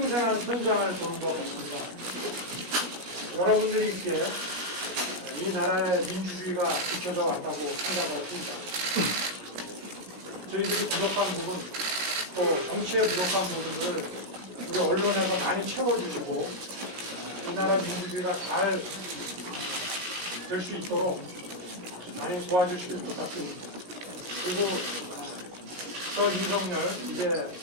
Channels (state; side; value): late; left; 21 ms